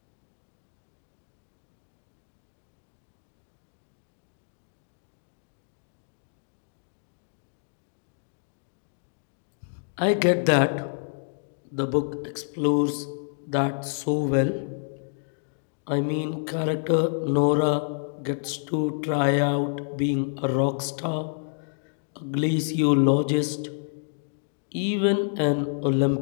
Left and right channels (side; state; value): right; silent; digital silence